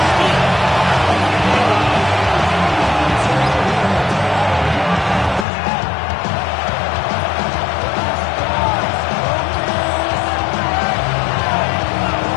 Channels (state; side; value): drops out; right; at 5.5 s